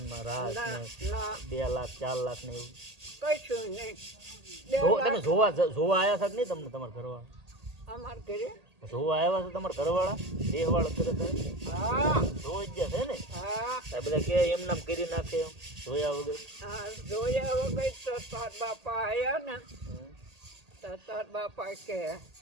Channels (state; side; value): late; left; 1.8 ms